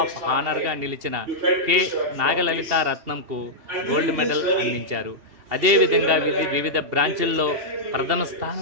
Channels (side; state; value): left; late; 2.8 ms